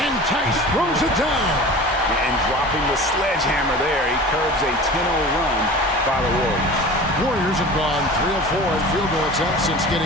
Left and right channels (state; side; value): normal; both; correlation 0.37